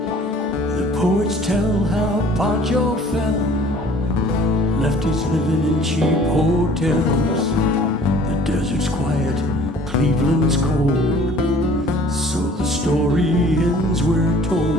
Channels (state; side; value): normal; both; correlation 0.52